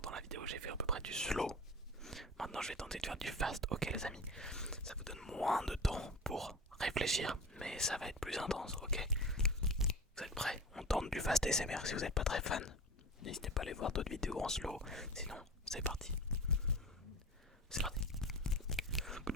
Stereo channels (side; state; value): both; normal; correlation 0.31